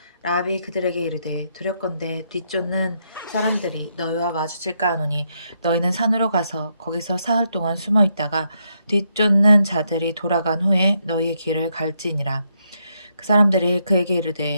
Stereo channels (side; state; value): both; inverted; correlation -0.78